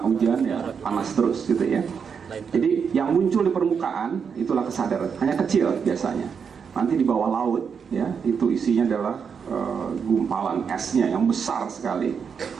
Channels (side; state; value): left; quieter; 6.5 dB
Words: hujan ya panas terus gitu ya. Jadi yang muncul di permukaan itulah kesadaran, hanya kecil biasanya. Nanti di bawah laut ya itu isinya adalah gumpalan esnya yang besar sekali.